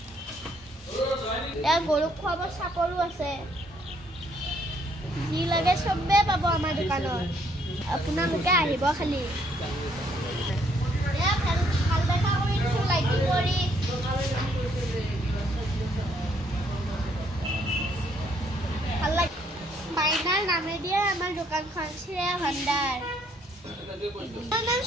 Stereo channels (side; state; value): both; normal; correlation 0.68